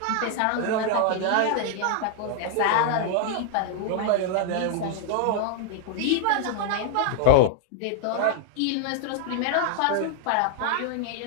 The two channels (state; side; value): different; both; correlation -0.01